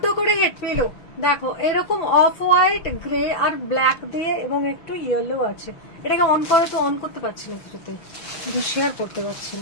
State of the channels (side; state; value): right; late; 6.1 ms